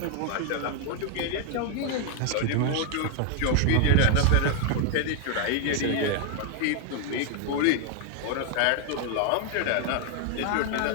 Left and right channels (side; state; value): both; different; correlation 0.00